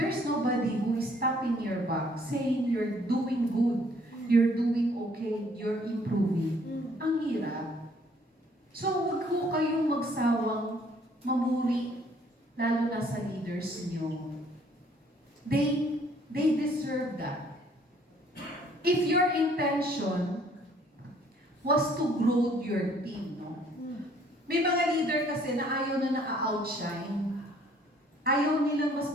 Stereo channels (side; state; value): both; normal; correlation 0.61